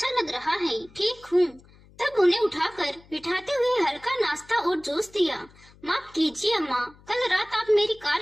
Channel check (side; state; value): left; noise; hum, 26 dB below the sound